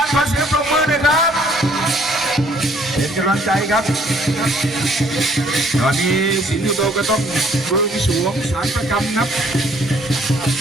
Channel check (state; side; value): normal; both; correlation 0.62